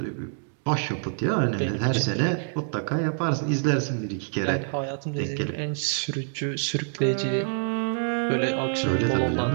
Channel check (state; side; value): silent; left; digital silence